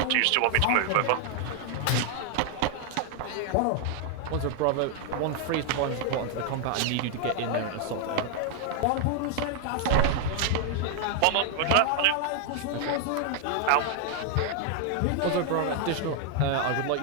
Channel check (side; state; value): both; different; correlation 0.00